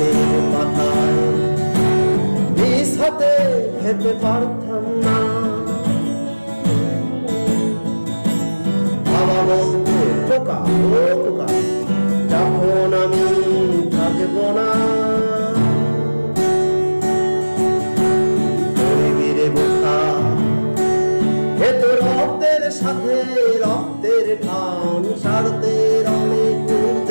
পাতায় নিজ হাতে খেতে পারতাম না। বাবা বলতো খোকা ও খোকা যখন আমি থাকব না, রক্তের সাথে রক্তের টান সারদের অনেক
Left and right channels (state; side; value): inverted; both; correlation -1.00